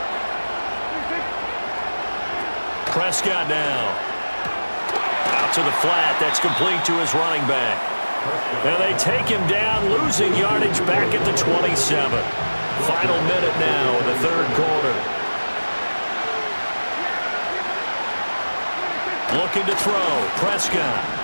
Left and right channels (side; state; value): both; inverted; correlation -1.00